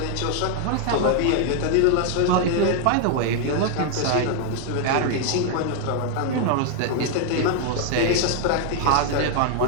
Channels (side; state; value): both; different; correlation 0.00